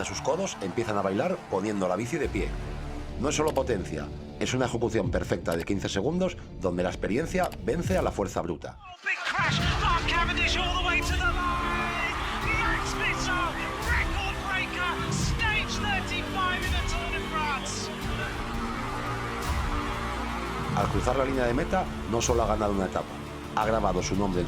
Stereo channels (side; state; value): both; identical; correlation 1.00